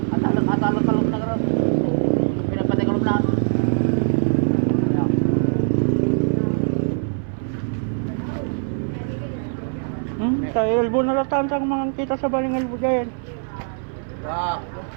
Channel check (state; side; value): silent; left; 58 dB below the other